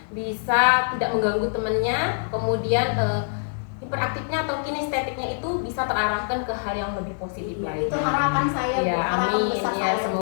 bisa tidak mengganggu temannya, kemudian hiperaktifnya atau kinestetiknya itu bisa terarahkan ke hal yang lebih positif lagi. Itu harapan saya Bu, harapan besar ya, saya.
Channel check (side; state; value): right; silent; 56 dB below the other